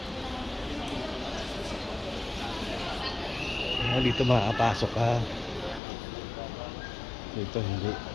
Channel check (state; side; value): drops out; right; at 5.8 s